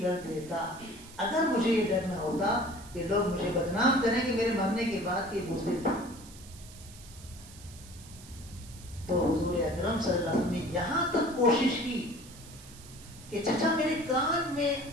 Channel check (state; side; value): noise; right; hiss, 19 dB below the sound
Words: کر دیتا اگر مجھے یہ ڈر نہ ہوتا کہ لوگ مجھے بدنام کریں کہ میرے مرنے کے بعد یہ بزدل تھا. تو حضور اکرم صلی اللہ علیہ وسلم نے یہاں تک کوشش کی کہ چچا میرے کان میں